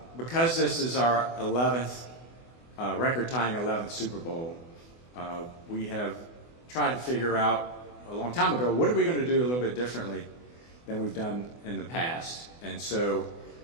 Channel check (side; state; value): right; late; 24 ms